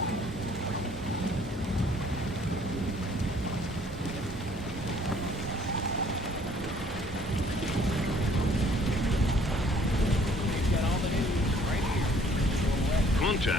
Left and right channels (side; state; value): both; normal; correlation 0.59